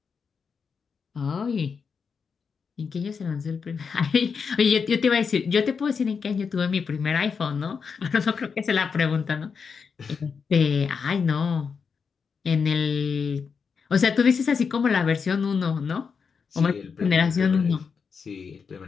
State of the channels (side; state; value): right; quieter; 5.8 dB